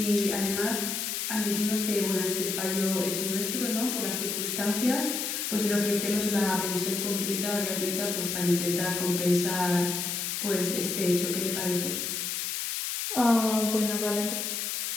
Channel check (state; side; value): noise; left; hiss, 2 dB below the sound